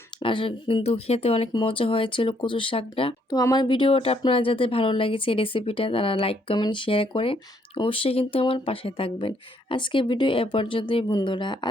আর কিন্তু খেতে অনেক মজা হয়েছিল কচু শাকটা। তো আমার ভিডিওটা আপনারা যাদের ভালো লেগেছে রেসিপিটা, তারা লাইক কমেন্ট শেয়ার করে অবশ্যই কিন্তু আমার পাশে থাকবেন। আজকে ভিডিও এ পর্যন্তই বন্ধুরা,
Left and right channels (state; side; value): normal; both; correlation 0.70